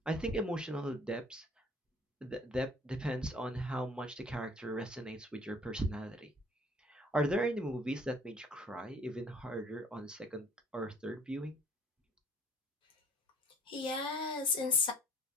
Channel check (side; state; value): both; normal; correlation 0.54